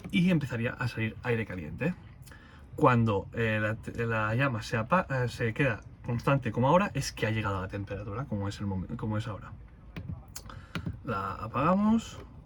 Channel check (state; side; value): identical; both; correlation 1.00